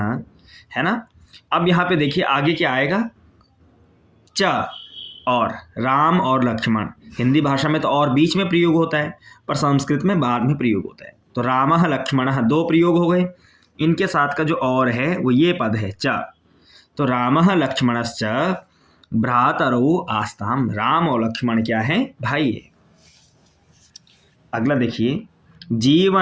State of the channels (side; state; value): both; identical; correlation 1.00